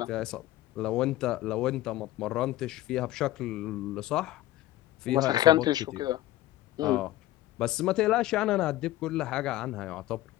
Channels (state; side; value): quieter; right; 15.6 dB